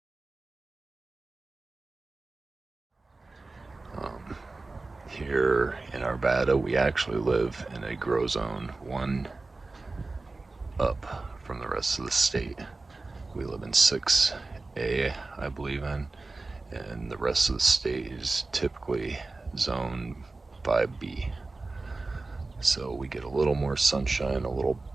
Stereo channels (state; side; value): quieter; left; 3.5 dB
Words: Here in Arvada, we actually live in a grow zone, one up from the rest of the state. We live in 6A, I believe in, and the rest of the state is typically zone 5B. So we get a little more sunshine, a little